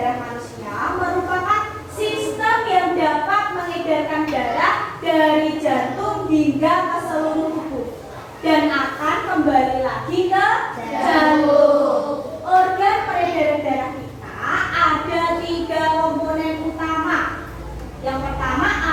manusia merupakan sistem yang hingga ke seluruh tubuh dan akan kembali lagi ke jantung. Organ peredaran darah kita ada 3 komponen utama. Yang pertama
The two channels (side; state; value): both; identical; correlation 1.00